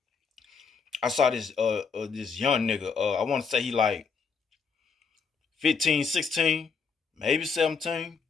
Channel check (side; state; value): right; quieter; 5.6 dB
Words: I saw this young nigga. I want to say he like 15, 16, maybe 17.